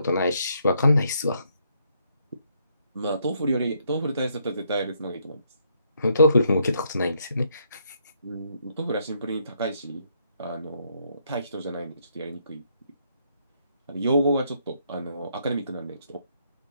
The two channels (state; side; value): inverted; both; correlation -0.73